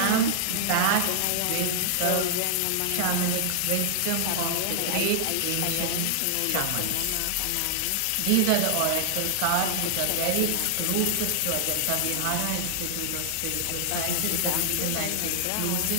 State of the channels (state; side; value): different; both; correlation -0.01